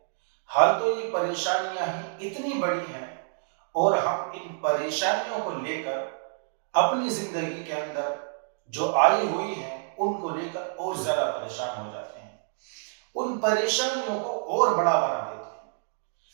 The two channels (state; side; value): silent; left; digital silence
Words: حال تو یہ پریشانیاں ہی اتنی بڑی ہیں اور ہم ان پریشانیوں کو لے کر اپنی زندگی کے اندر جو آئی ہوئی ہیں ان کو لے کر اور زیادہ پریشان ہو جاتے ہیں، ان پریشانیوں کو اور بڑا بنا دیتے ہیں۔